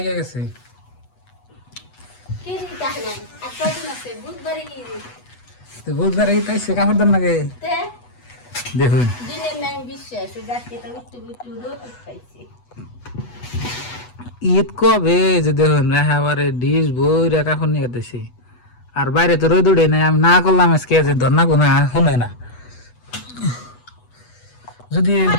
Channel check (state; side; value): late; right; 8.2 ms